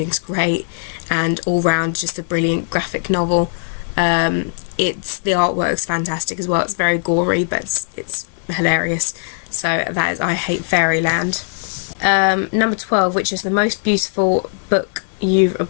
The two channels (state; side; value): silent; right; digital silence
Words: great, and all round just a brilliant graphic novel. The artwork's fantastic as well. It's very gory, but it's hilarious. So that is I Hate Fairyland. Number 12, which is the most beautiful book you've